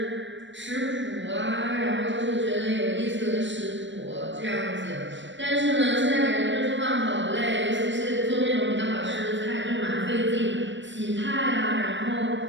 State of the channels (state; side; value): late; left; 0.54 ms